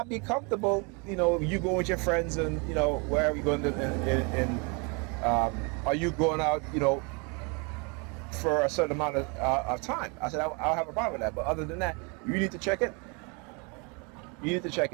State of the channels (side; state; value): left; quieter; 32.1 dB